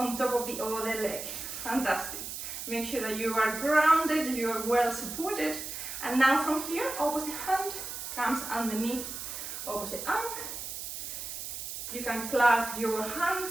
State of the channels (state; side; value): noise; right; hiss, 7 dB below the sound